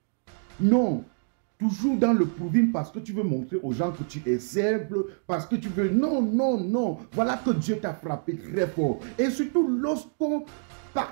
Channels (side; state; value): left; silent; digital silence